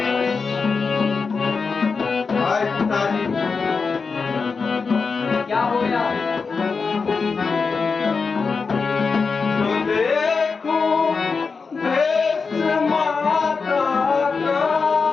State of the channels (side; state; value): right; quieter; 4.9 dB